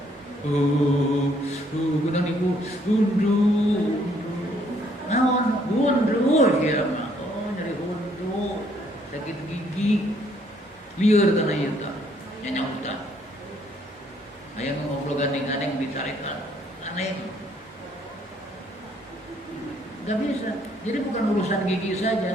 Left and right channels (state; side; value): normal; both; correlation 0.66